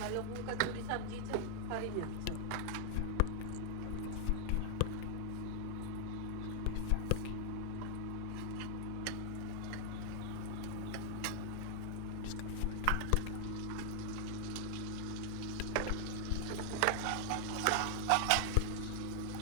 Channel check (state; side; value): different; both; correlation 0.00